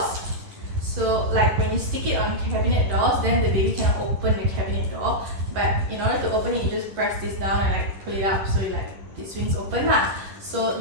So like when you stick it on cabinet doors, then the baby cannot open the cabinet door. But in order to open it, you just press this down and like pull it up, so it swings open lah. So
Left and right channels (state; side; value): late; left; 10 ms